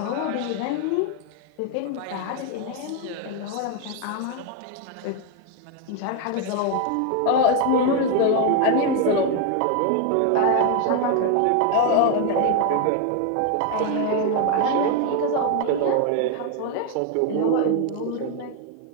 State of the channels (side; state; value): both; different; correlation 0.01